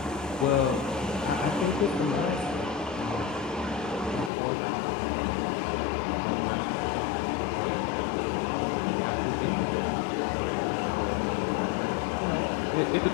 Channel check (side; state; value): right; drops out; at 4.3 s